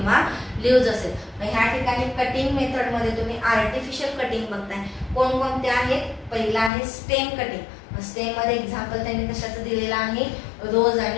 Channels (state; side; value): drops out; right; at 6.7 s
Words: लिव्ज असेल. मग ह्या ठिकाणी कटिंग मेथड मध्ये तुम्ही आर्टिफिशियल कटिंग बघताय. कोणकोणते आहेत? पहिला आहे स्टेम कटिंग. स्टेम मध्ये एक्झाम्पल त्यांनी कशाचं दिलेलं आहे? रोज